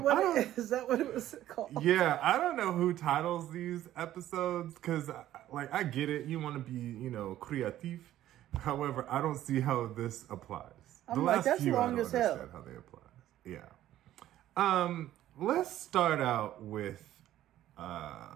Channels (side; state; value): left; quieter; 13.1 dB